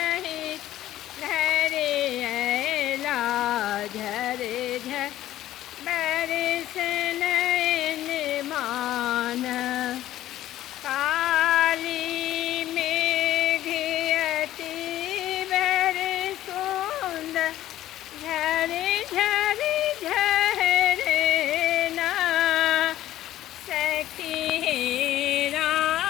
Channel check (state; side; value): quieter; right; 13.7 dB